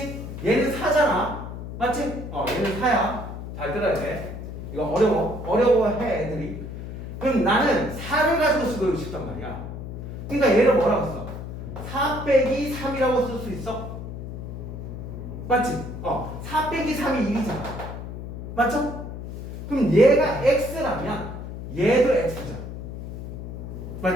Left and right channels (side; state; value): left; noise; hum, 8 dB below the sound